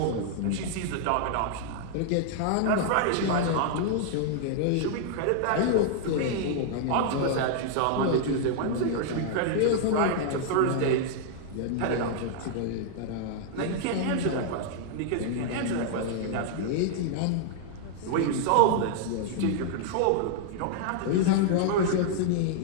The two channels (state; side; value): different; both; correlation -0.01